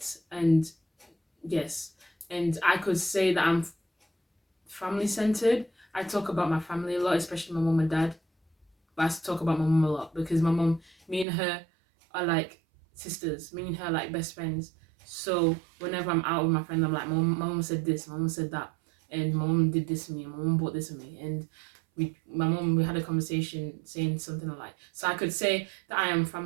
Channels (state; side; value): drops out; left; at 11.2 s